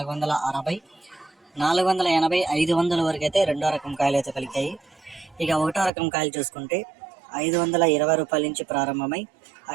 480, 500 వరకు అయితే రెండో రకం కాయలు అయితే పలికాయి. ఇక ఒకటో రకం కాయలు చూసుకుంటే 520 రూపాయల నుంచి ప్రారంభమై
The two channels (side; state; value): left; drops out; at 5.9 s